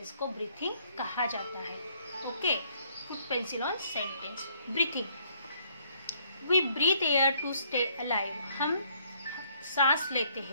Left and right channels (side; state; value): both; inverted; correlation -0.65